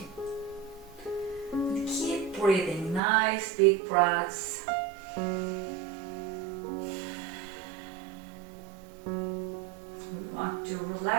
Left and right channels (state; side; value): drops out; left; at 3.0 s